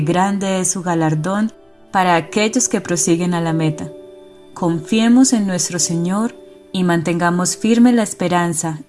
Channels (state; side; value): identical; both; correlation 1.00